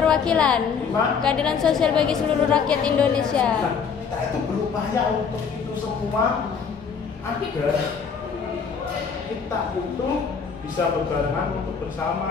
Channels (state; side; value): quieter; right; 6.2 dB